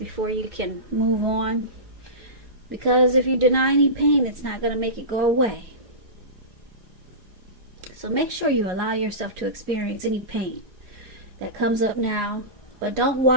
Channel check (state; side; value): late; left; 4.9 ms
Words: you can move on. Because if you deny any pain, it's not going to make it go away. So make sure you allow yourself to experience any pain that comes up now, but don't